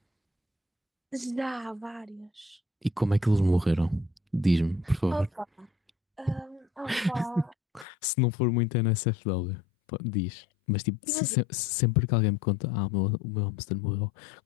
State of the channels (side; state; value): right; drops out; at 7.9 s